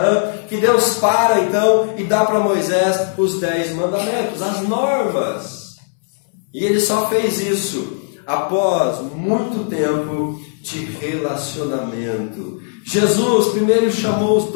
que Deus para então e dá para Moisés os 10 mandamentos, as normas. E ele só fez isso após muito tempo de relacionamento. Jesus primeiro chamou os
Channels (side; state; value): right; silent; 65 dB below the other